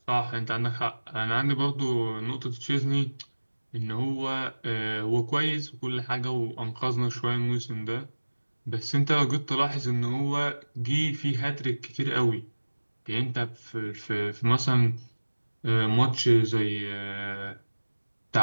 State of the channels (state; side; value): inverted; both; correlation -1.00